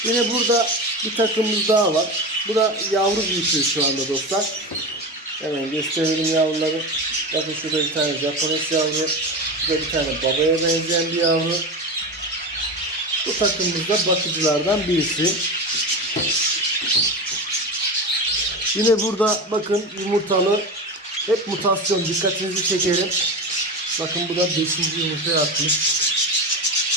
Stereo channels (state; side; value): normal; both; correlation 0.23